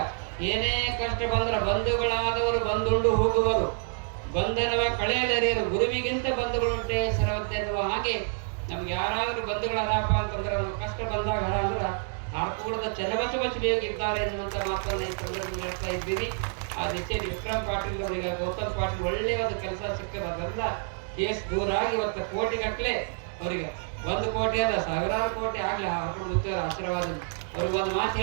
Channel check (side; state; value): left; silent; 59 dB below the other